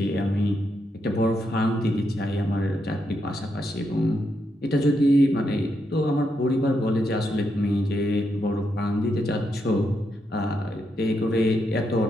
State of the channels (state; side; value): normal; both; correlation 0.81